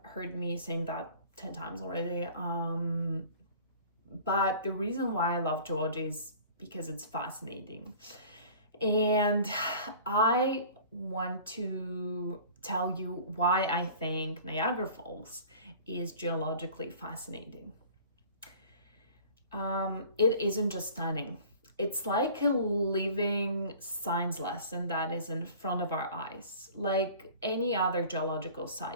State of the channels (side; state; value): both; inverted; correlation -0.45